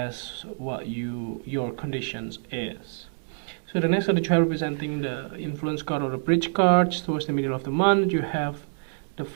what your conditions is. So the next card that you have representing the influence card or the bridge cards towards the middle of the month, you have the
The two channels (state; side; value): silent; left; digital silence